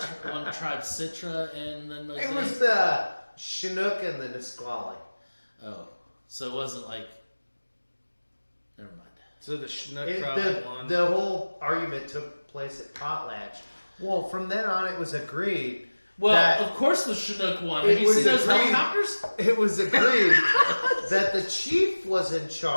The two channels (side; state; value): both; inverted; correlation -1.00